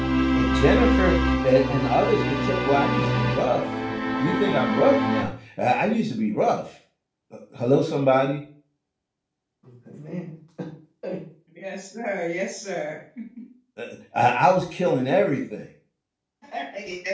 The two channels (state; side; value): identical; both; correlation 1.00